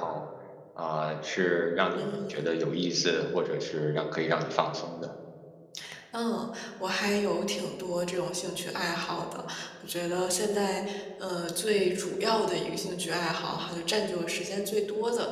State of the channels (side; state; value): both; identical; correlation 1.00